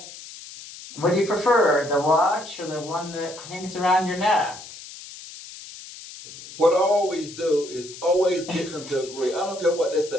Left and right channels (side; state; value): left; noise; hiss, 15 dB below the sound